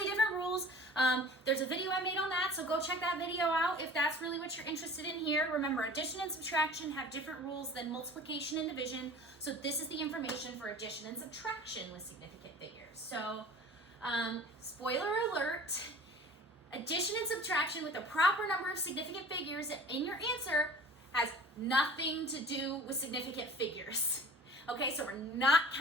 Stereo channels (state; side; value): normal; both; correlation 0.43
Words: different rules. There's a video I made on that, so go check that video out if that's really what you're interested in here. Remember, addition and subtraction have different rules than multiplication and division, so this is the information for addition and subtraction with significant figures. So, spoiler alert. Addition and subtraction with the proper number of significant figures in your answer has nothing to do with significant figures. Okay, so we're not